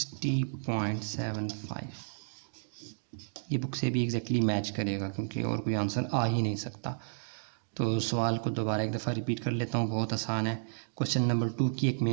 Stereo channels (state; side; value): silent; left; digital silence